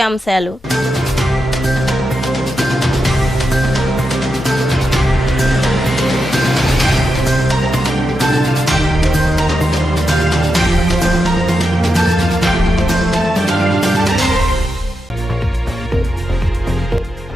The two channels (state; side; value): normal; both; correlation 0.87